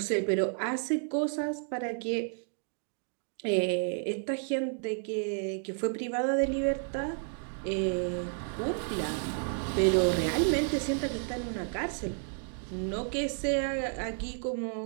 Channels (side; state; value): left; silent; 56 dB below the other